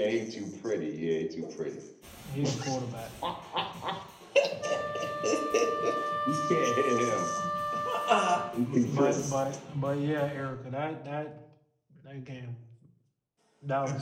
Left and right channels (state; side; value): identical; both; correlation 1.00